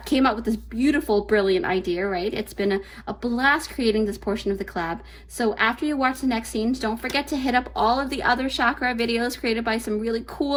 came up with this beautiful, brilliant idea, right? It's been a blast creating this portion of the collab. So after you watch the next scenes, don't forget to hit up all of the other chakra videos created by some really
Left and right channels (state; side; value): identical; both; correlation 1.00